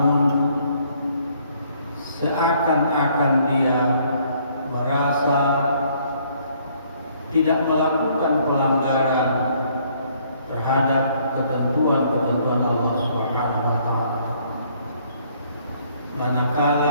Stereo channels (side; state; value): both; inverted; correlation -0.65